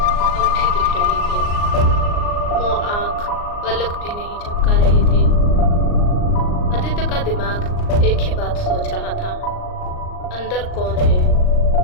अब भी दिख रही थी। वो आँख पलक भी नहीं झपका रही थी। आदित्य का दिमाग एक ही बात सोच रहा था, अंदर कौन है?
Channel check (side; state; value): right; late; 39 ms